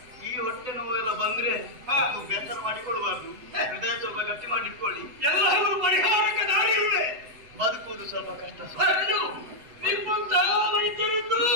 ಈ ಹೊಟ್ಟೆ ನೋವೆಲ್ಲ ಬಂದ್ರೆ ಬೇಸರ ಮಾಡಿಕೊಳ್ಬಾರ್ದು, ಹೃದಯ ಸ್ವಲ್ಪ ಗಟ್ಟಿ ಮಾಡಿಟ್ಕೊಳ್ಳಿ. ಎಲ್ಲರೂ ಪರಿಹಾರಕ್ಕೆ ದಾರಿ ಇದೆ. ಬದುಕುವುದು ಸ್ವಲ್ಪ ಕಷ್ಟ. ನಿಮ್ಮಂತಹ ವೈದ್ಯರಿದ್ದು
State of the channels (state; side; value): late; left; 7.9 ms